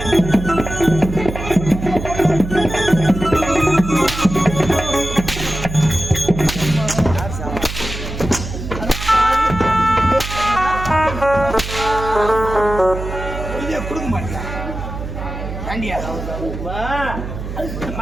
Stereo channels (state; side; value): noise; right; hum, 8 dB below the sound